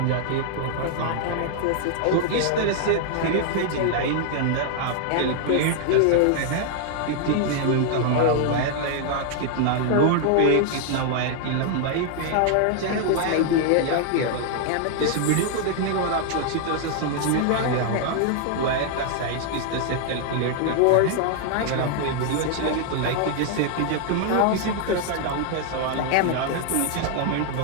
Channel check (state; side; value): different; both; correlation 0.00